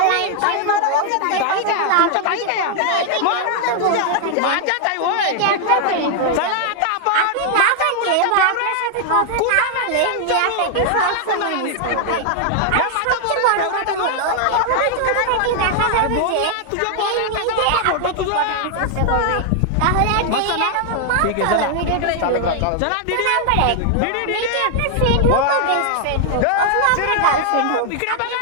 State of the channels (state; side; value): different; both; correlation 0.00